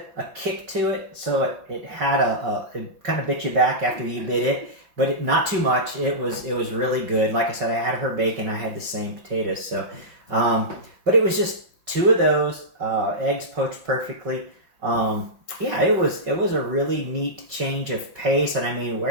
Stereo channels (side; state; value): left; late; 5.8 ms